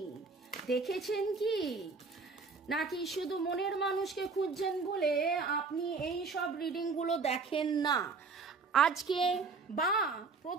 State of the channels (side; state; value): left; quieter; 4.5 dB